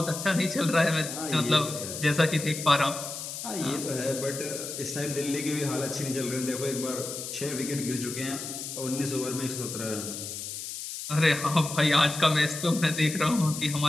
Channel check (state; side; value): noise; left; hiss, 7 dB below the sound